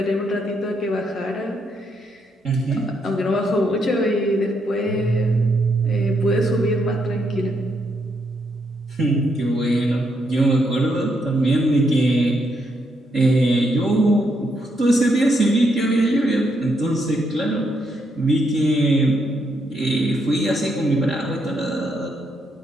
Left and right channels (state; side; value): normal; both; correlation 0.77